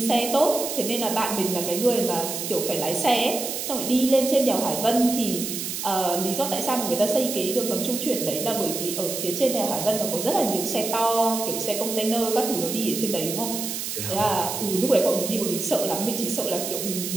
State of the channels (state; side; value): noise; right; hiss, 5 dB below the sound